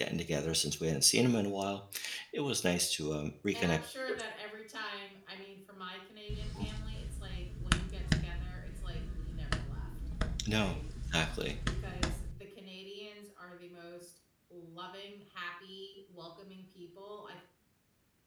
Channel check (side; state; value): both; identical; correlation 1.00